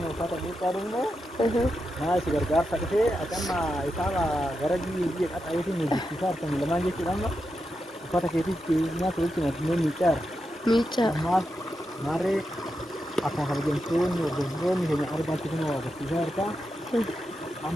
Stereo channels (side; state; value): both; normal; correlation 0.87